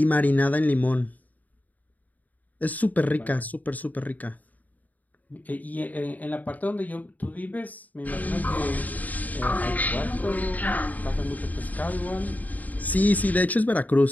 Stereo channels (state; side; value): late; right; 0.078 ms